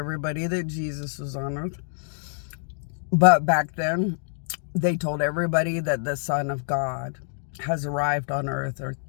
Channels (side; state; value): right; silent; digital silence